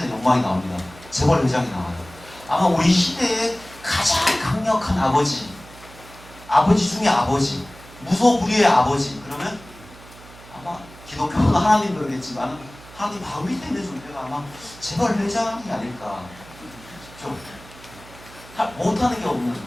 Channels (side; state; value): right; noise; hum, 20 dB below the sound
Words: 영광이 나옵니다. 재벌 회장이 나와요. 아마 우리 시대의 가장 강력한 아버지 중에 아버지, 무소불위의 아버지. 그러면 아마 기독교는 하나님 그러겠지만 하나님 바로 밑에 있는 존재가 아마 재벌 회장이 아닐까. 좀 못하는 게 없는,